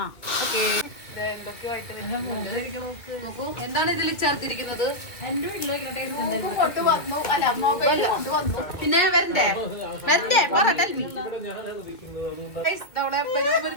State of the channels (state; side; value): late; right; 2.1 ms